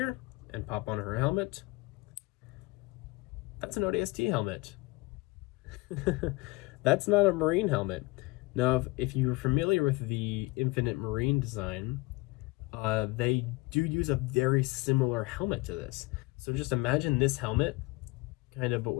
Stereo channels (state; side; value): quieter; right; 23.3 dB